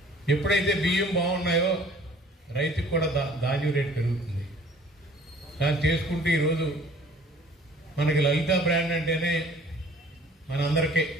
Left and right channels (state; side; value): normal; both; correlation 0.53